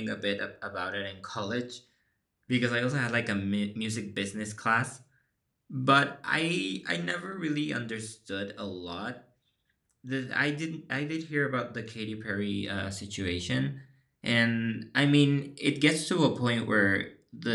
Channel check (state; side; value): identical; both; correlation 1.00